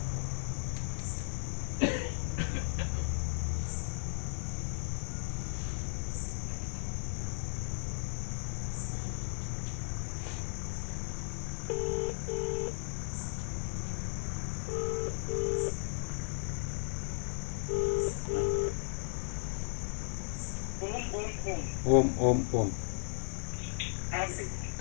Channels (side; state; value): right; silent; digital silence